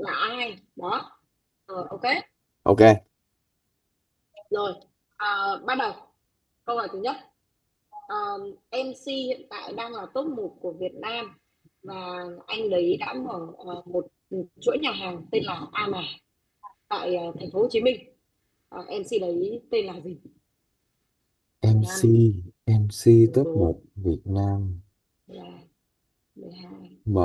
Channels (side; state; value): both; identical; correlation 1.00